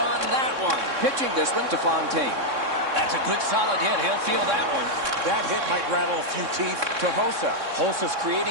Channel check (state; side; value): late; left; 3.6 ms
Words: that one. Pitching this one to Fontaine. That's a good solid hit. He'll feel that one. That hit might rattle a few teeth. To Hossa. Hossa's